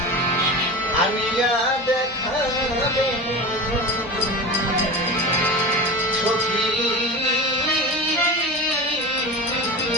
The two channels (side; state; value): both; normal; correlation 0.28